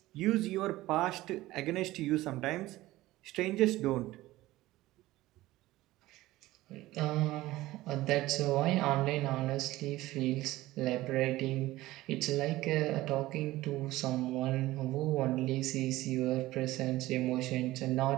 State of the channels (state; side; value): quieter; left; 17.2 dB